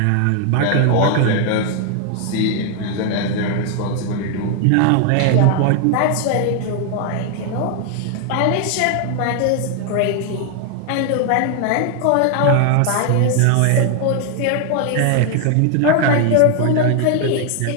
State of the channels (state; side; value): different; both; correlation 0.00